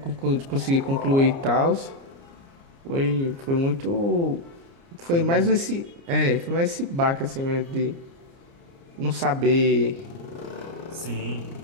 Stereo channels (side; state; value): left; late; 29 ms